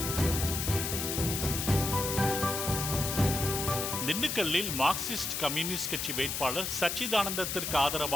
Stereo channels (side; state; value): left; noise; hiss, 2 dB below the sound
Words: திண்டுக்கல்லில் மார்க்சிஸ்ட் கம்யூனிஸ்ட் கட்சி வேட்பாளர் சச்சிதானந்தத்திற்கு